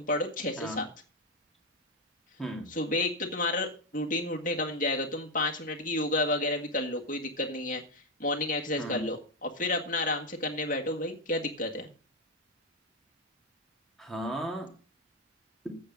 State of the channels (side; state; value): both; normal; correlation 0.05